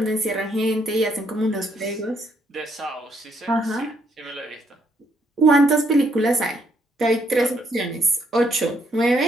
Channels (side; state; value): both; normal; correlation 0.71